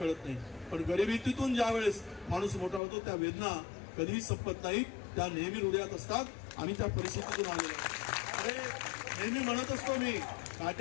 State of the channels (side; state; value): right; drops out; at 2.8 s